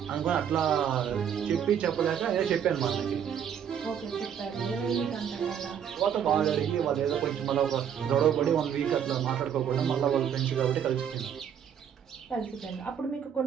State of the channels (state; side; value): quieter; left; 8.6 dB